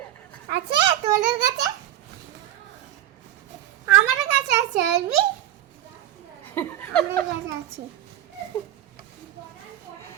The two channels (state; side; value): quieter; left; 12.3 dB